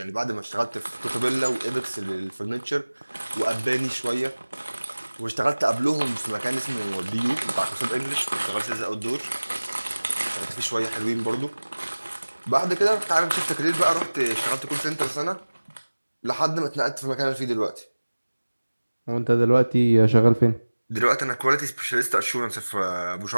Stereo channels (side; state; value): both; inverted; correlation -1.00